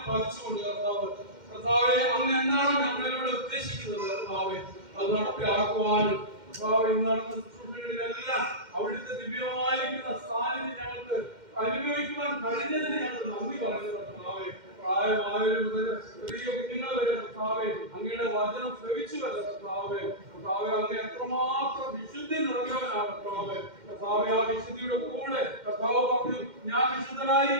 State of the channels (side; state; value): left; late; 2.1 ms